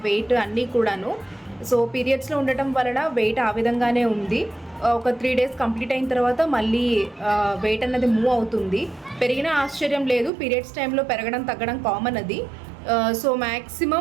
వెయిట్ అన్నీ కూడాను. సో పీరియడ్స్లో ఉండటం వలన వెయిట్ ఆ విధంగానే ఉంది. ఒక 3 days కంప్లీట్ అయిన తర్వాత మళ్ళీ వెయిట్ అన్నది మూవ్ అవుతుంది. పెరిగినా ఆశ్చర్యం లేదు, పీరియడ్స్ టైంలో పెరగడం తగ్గడం కామన్ అది. సో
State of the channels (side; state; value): left; drops out; at 10.3 s